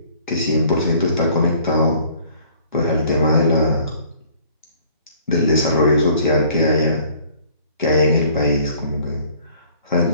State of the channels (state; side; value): inverted; both; correlation -0.55